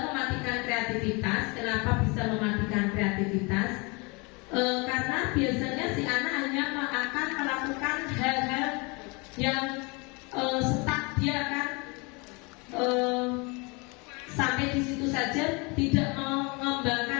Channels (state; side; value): quieter; right; 28.8 dB